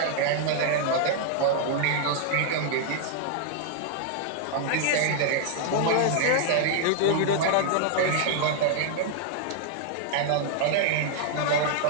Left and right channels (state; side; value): different; both; correlation -0.01